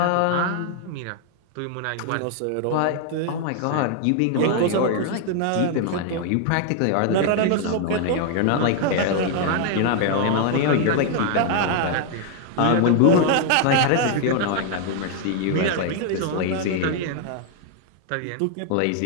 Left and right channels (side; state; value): both; different; correlation 0.00